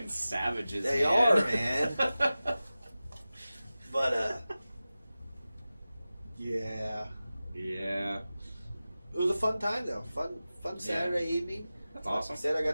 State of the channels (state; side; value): inverted; both; correlation -0.96